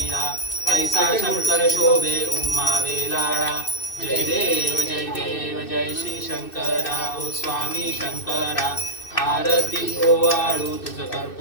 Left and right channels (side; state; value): right; late; 2.6 ms